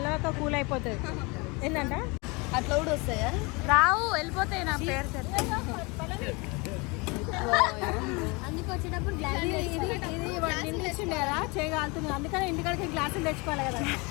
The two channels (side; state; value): right; quieter; 27.7 dB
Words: కూల్ అయిపోతుంది. ఏంటంట అట్లా కూడా వస్తాయా? రావు, వెళ్ళిపోతాయి. నా పేరు అందుకు వచ్చేటప్పుడు ఇది ఇచ్చిండే కదా చేయగలుగుతుంది, అందుకని ఇంటికాడికి గ్లాసులు తెచ్చుకోవాలి కదా.